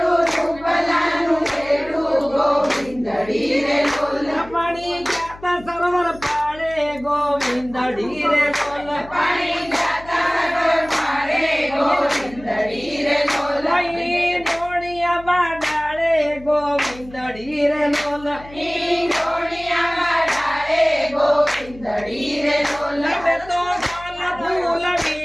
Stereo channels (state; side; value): noise; left; hum, 20 dB below the sound